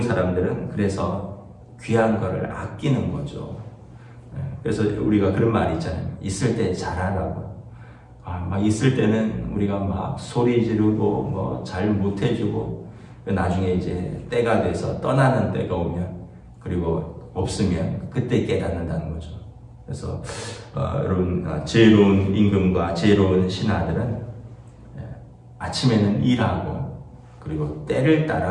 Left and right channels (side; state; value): both; identical; correlation 1.00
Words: 사람들은 그래서 귀한 거를 아끼는 거죠. 그래서 우리가 그런 말이 있잖아요. 있을 때 잘하라고. 막 있을 때는 우리가 막 소리 지르고 잘 못해주고, 나중에 이제 때가 돼서 떠나는 때가 오면, 그리고 없으면 그때 깨닫는다는 거죠. 그래서 여러분, 지혜로운 임금과 지혜로운 신하들은 아침에는 일하고, 그리고 때를